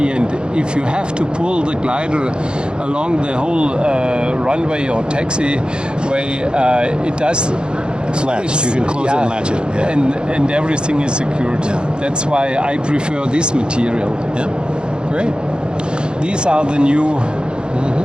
and if you have to pull the glider along the whole runway or taxiway, it does. it's latched. You can close it and latch it. Yeah. And everything is secured. Yeah. That's why I prefer this material. Yeah. Great. These are the new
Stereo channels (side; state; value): left; late; 0.050 ms